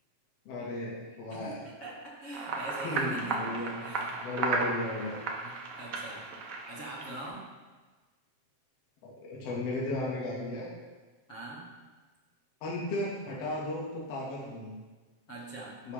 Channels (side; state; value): right; late; 7.3 ms